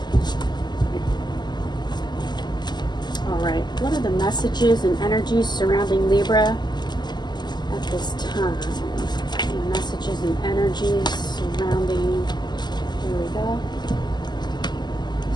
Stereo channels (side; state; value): right; late; 0.21 ms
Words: Alright, what are the messages and energies surrounding Libra at this time? The messages and energies surrounding, here we go.